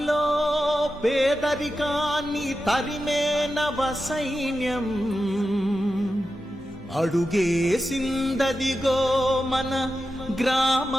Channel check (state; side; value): normal; both; correlation 0.91